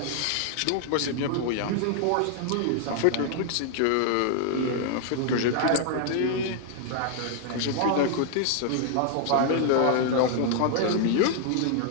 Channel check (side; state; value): both; different; correlation -0.01